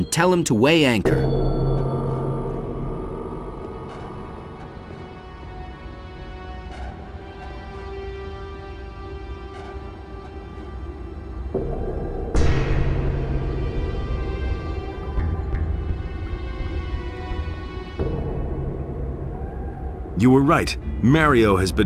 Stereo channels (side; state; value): both; identical; correlation 1.00